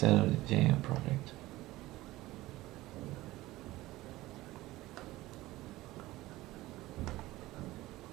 of the JM project.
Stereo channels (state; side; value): quieter; left; 17.9 dB